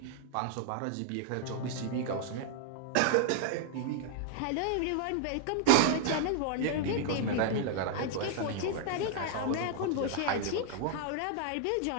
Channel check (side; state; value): both; different; correlation -0.01